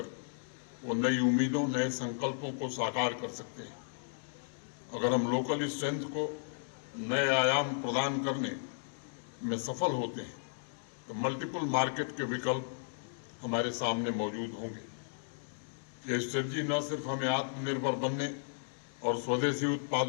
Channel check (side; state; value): right; silent; digital silence